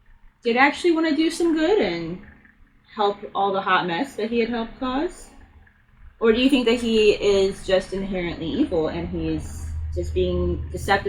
did actually want to do some good and help all the hot mess that he had helped cause? Or do you think that he is just inherently evil and he's just being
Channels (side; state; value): both; identical; correlation 1.00